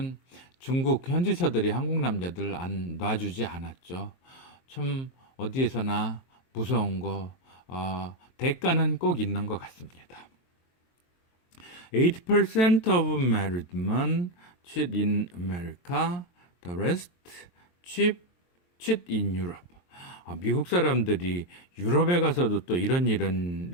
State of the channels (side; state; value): right; late; 23 ms